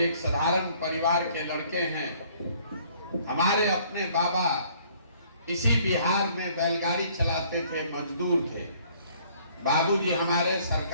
एक साधारण परिवार के लड़के हैं। हमारे अपने बाबा इसी बिहार में बैलगाड़ी चलाते थे, मजदूर थे। बाबूजी हमारे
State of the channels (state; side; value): inverted; both; correlation -0.59